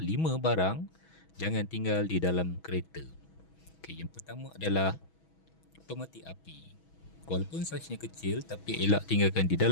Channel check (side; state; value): right; late; 6.2 ms